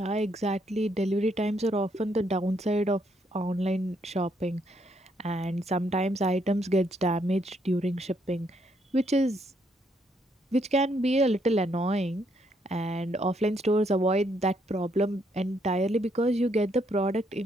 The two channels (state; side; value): normal; both; correlation 0.73